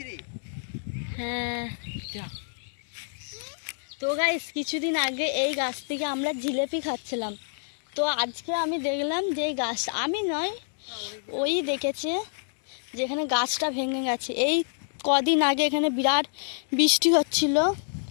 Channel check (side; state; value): right; silent; digital silence